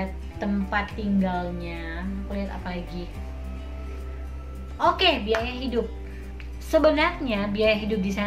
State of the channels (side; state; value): both; identical; correlation 1.00